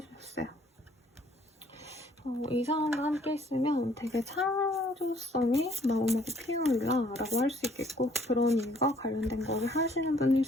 이 사람과 함께 있으면 되게 창조성이 마음하고 피어올라라고 할 수 있겠고, 그런 일과 관련된 거를 하시는 분일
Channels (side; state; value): both; normal; correlation 0.61